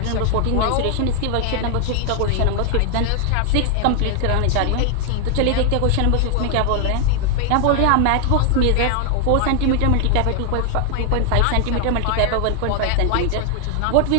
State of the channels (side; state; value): both; different; correlation 0.00